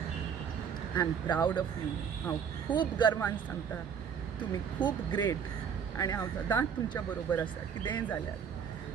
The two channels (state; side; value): quieter; left; 7.3 dB